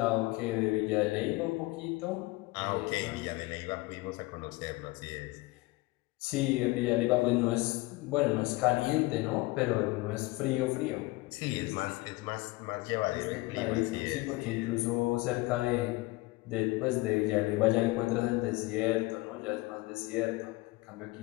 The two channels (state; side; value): quieter; right; 21.7 dB